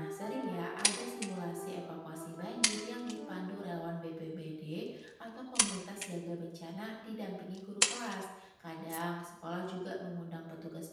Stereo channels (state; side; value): identical; both; correlation 1.00